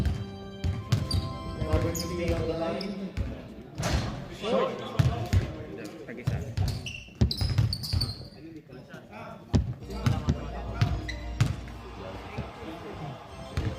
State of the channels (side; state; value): both; identical; correlation 1.00